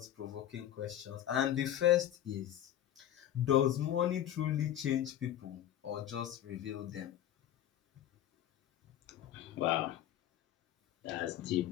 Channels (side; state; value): right; quieter; 11.7 dB